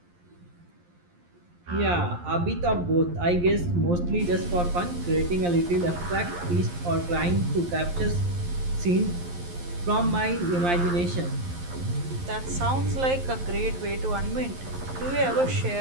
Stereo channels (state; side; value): late; left; 11 ms